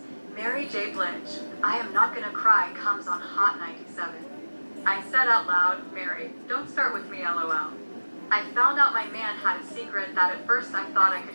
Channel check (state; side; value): inverted; both; correlation -1.00